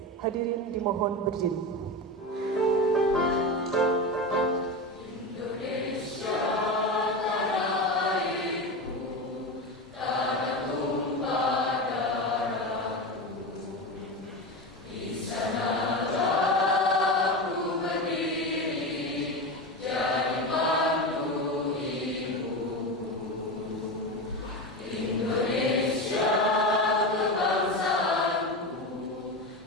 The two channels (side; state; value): both; normal; correlation 0.21